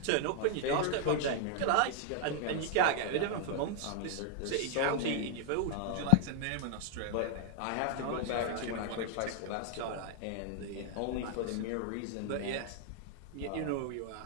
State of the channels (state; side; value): different; both; correlation 0.00